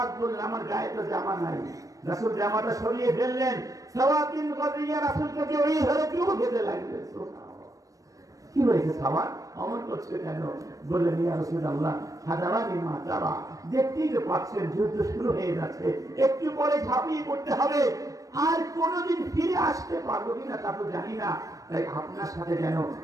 বললেন, আমার গায়ে তো জামা নাই। রাসূল জামাটা সরিয়ে ফেললেন। সাওয়াদ বিন গাজিয়া রাসূলকে জড়িয়ে ধরে চুমু খেতে লাগলেন। কি হয়েছে সাওয়াদ, অমন করছে কেন? বললেন, ইয়া রাসূলুল্লাহ, হাদারানি মা তারা, দেখতেই তো পাচ্ছেন যুদ্ধ শুরু হয়ে যাচ্ছে, একটু পরে ঝাঁপিয়ে পড়তে হবে, আর কোনোদিন ফিরে আসতে পারবো কিনা তা তো জানি না, তাই আপনার সাথে যেন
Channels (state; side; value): late; left; 0.16 ms